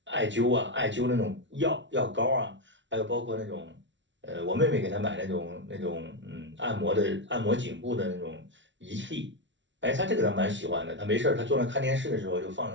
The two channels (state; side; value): late; left; 0.54 ms